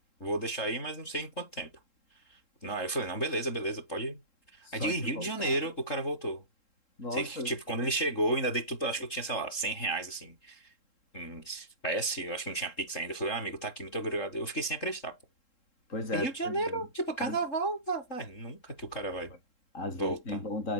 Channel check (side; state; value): right; late; 3.7 ms